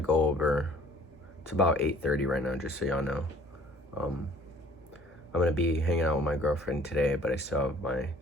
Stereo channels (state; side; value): normal; both; correlation 0.54